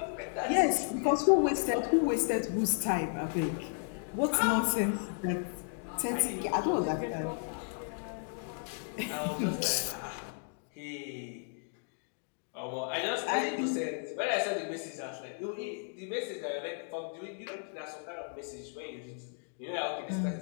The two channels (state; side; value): silent; right; 55 dB below the other